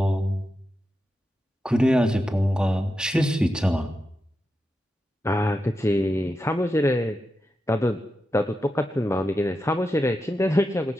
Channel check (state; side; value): normal; both; correlation 0.89